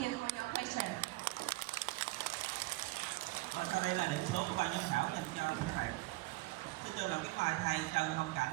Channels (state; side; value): quieter; left; 21.1 dB